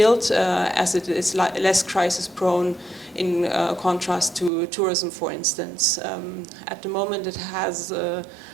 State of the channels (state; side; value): drops out; left; at 4.5 s